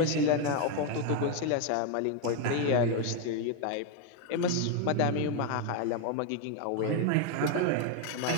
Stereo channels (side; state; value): both; different; correlation 0.01